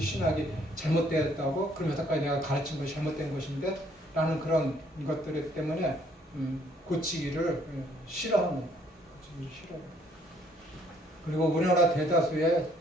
잘못되었다고? 그럼 여태까지 내가 가르친 것이 잘못된 것인데? 라는 그런 것들 때문에 고치기를 싫어합니다. 고치기를 싫어합니다. 그리고 우리나라 대다수의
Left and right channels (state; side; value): normal; both; correlation 0.64